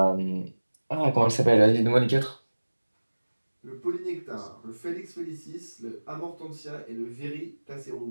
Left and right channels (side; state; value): both; inverted; correlation -1.00